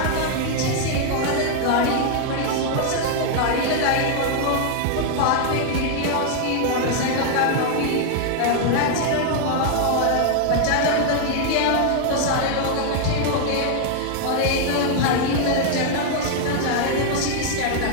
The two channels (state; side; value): different; both; correlation 0.00